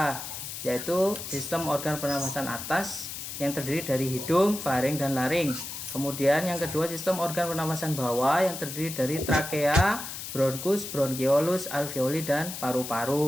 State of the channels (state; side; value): noise; left; hiss, 8 dB below the sound